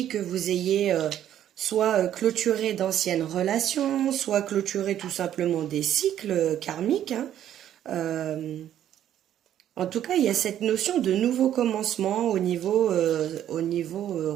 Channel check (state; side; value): quieter; left; 11.0 dB